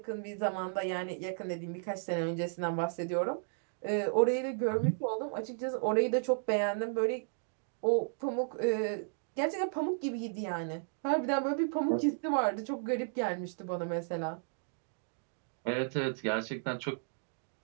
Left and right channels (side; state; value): left; silent; digital silence